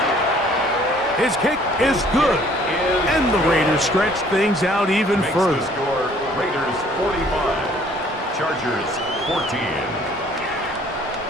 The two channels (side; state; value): both; normal; correlation 0.58